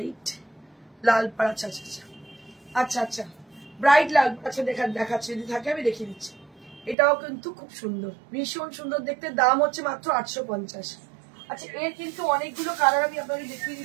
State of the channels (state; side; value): drops out; left; at 7.0 s